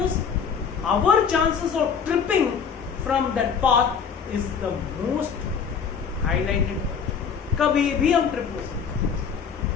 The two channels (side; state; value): right; quieter; 6.5 dB